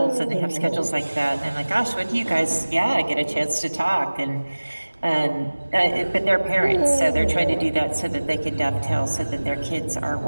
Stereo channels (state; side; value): inverted; both; correlation -1.00